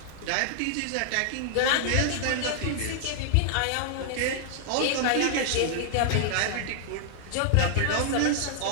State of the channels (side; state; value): both; different; correlation 0.00